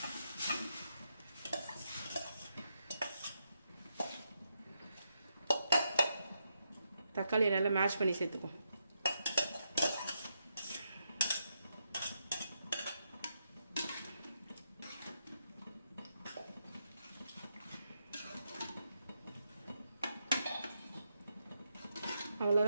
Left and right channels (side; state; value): both; inverted; correlation -0.82